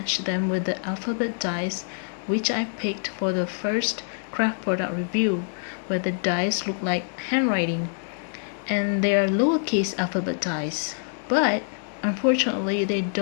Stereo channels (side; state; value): right; silent; digital silence